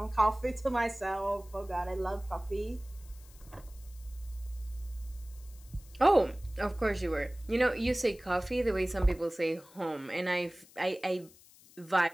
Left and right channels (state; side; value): noise; left; hiss, 24 dB below the sound